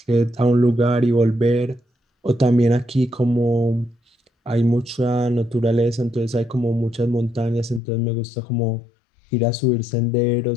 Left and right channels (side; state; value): right; drops out; at 7.8 s